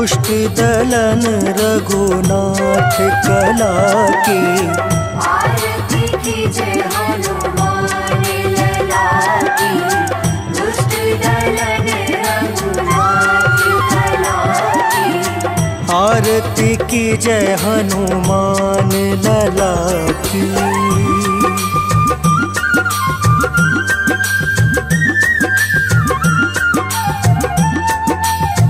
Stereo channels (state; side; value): identical; both; correlation 1.00